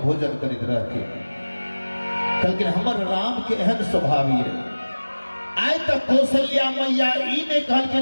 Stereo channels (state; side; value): inverted; both; correlation -1.00